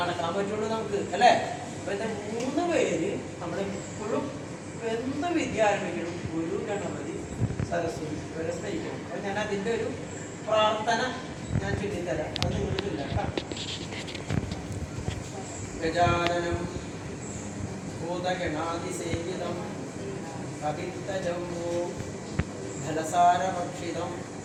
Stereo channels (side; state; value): both; identical; correlation 1.00